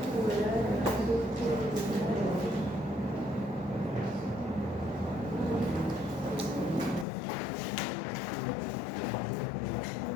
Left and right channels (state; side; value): drops out; right; at 7.1 s